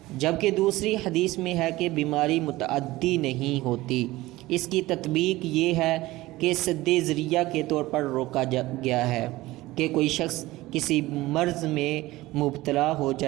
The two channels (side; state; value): left; quieter; 18.4 dB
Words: جبکہ دوسری حدیث میں ہے کہ بیماری متعدی نہیں ہوتی۔ اس کی تطبیق یہ ہے کہ سد ذریعہ کے طور پر روکا گیا ہے کہ کوئی شخص کسی مرض میں مبتلا ہو